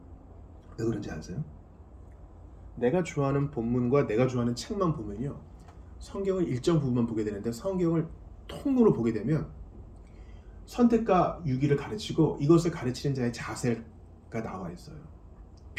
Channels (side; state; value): both; identical; correlation 1.00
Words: 왜 그런지 아세요? 내가 좋아하는 본문과 내가 좋아하는 책만 보면요, 성경을 일정 부분만 보게 되는데 성경을 통으로 보게 되면 선택과 유기를 가르치고 이것을 가르치는 자의 자세가 나와 있어요.